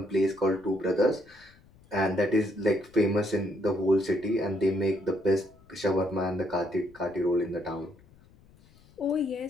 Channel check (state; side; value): noise; left; rumble, 27 dB below the sound